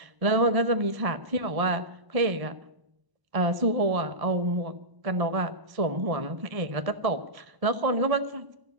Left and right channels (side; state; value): left; late; 1.0 ms